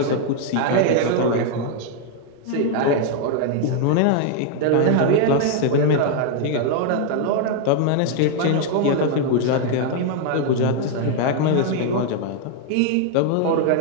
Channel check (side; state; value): both; different; correlation 0.00